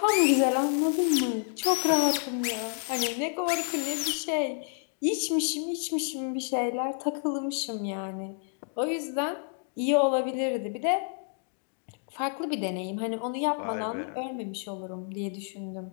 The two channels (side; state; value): right; silent; 58 dB below the other